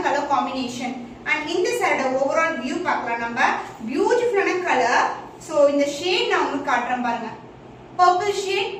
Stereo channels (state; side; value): identical; both; correlation 1.00